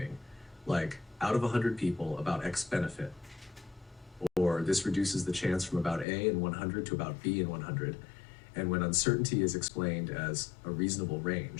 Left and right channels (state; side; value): drops out; right; at 6.1 s